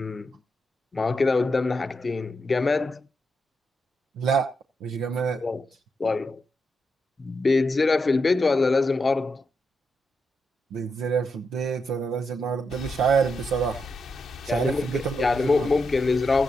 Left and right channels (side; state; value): both; normal; correlation 0.84